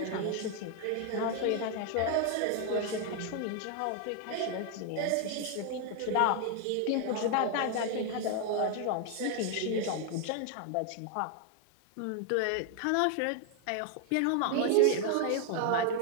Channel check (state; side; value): different; both; correlation 0.00